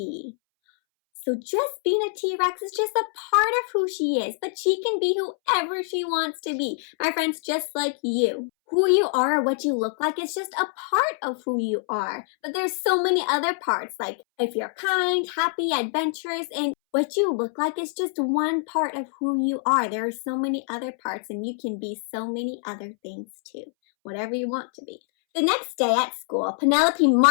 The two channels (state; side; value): silent; right; 62 dB below the other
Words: So just being a T-Rex is just a part of who she is, but she can be whoever she wants to be. My friends, just like you. Who you are or what you look like is just a part of who you are. But there's so many other parts, like if you're kind, happy, adventurous, and what you look like is just one part of who you are. There are so many other parts, and you can be so many other things too. Whatever you want to be. The next day at school, Penelope